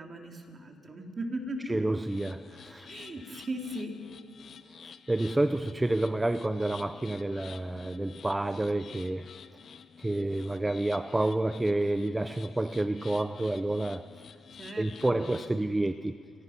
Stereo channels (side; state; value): both; normal; correlation 0.98